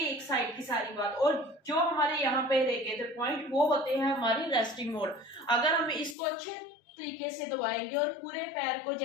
एक साइड की सारी बात। और जो हमारे यहाँ पे रह गए थे पॉइंट वो होते हैं हमारी रेस्टिंग मोड। अगर हम इसको अच्छे तरीके से दबाएंगे और पूरे पैर को,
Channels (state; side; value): drops out; right; at 6.2 s